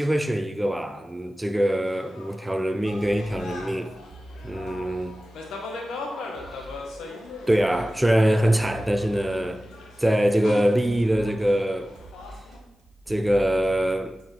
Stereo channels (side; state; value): both; normal; correlation 0.96